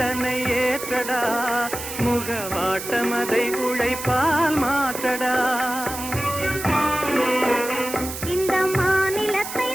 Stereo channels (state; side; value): noise; right; hiss, 8 dB below the sound